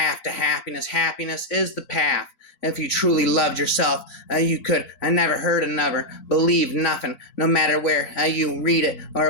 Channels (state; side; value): late; right; 4.0 ms